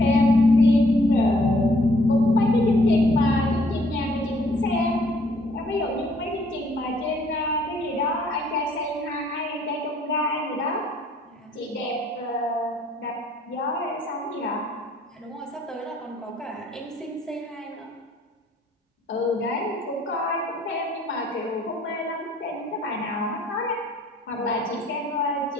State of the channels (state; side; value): normal; both; correlation 0.64